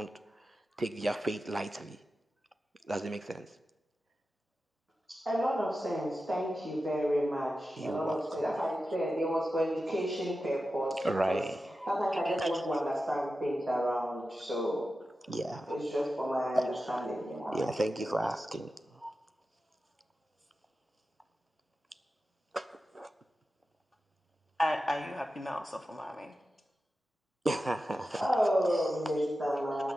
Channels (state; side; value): normal; both; correlation 0.92